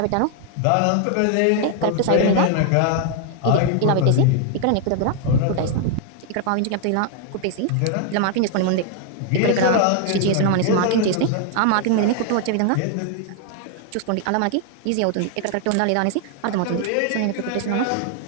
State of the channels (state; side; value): different; both; correlation 0.00